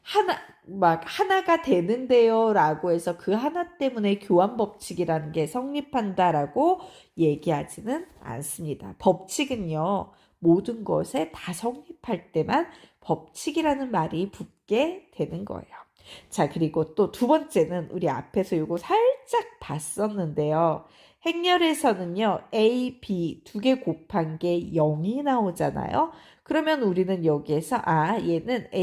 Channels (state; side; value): identical; both; correlation 1.00